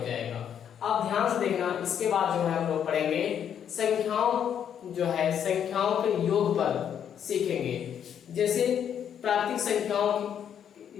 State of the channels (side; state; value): right; quieter; 8.8 dB